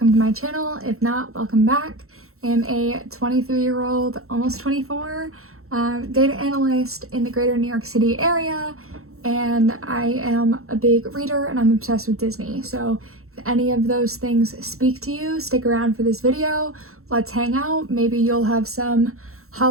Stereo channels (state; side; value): late; left; 0.63 ms